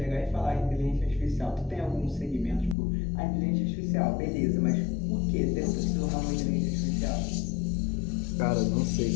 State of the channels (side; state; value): right; drops out; at 2.8 s